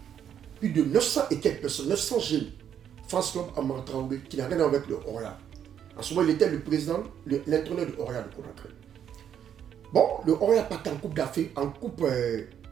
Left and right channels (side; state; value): left; quieter; 9.1 dB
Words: Plus de 900 et quelques personnes, 900 jeunes. France Club Amara Traoré, qui n'a rien à voir avec le Orient. En ce moment, il était le président, l'entraîneur de Orient de Conakry. Bon, le Orient partait en Coupe d'Afrique, en Coupe